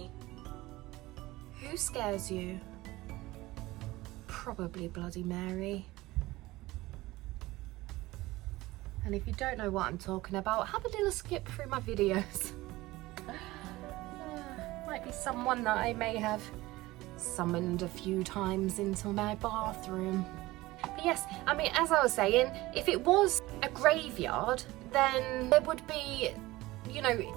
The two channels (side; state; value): left; quieter; 19.1 dB